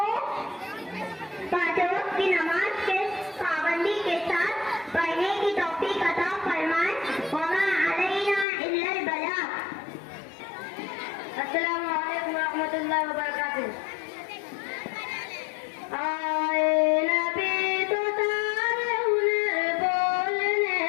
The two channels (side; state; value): right; drops out; at 8.5 s